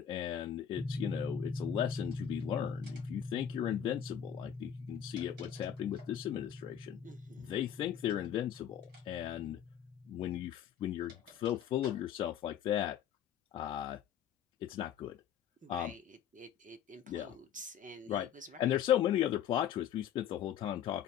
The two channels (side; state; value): right; quieter; 9.3 dB